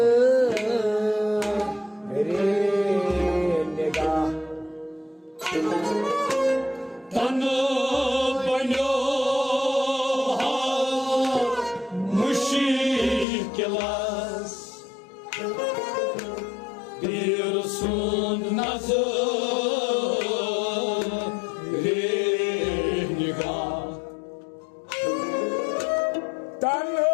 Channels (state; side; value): drops out; right; at 13.2 s